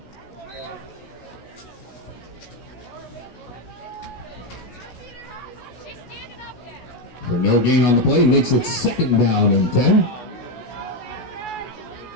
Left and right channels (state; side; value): late; right; 16 ms